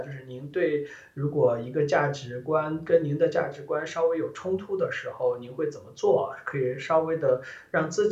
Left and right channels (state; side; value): identical; both; correlation 1.00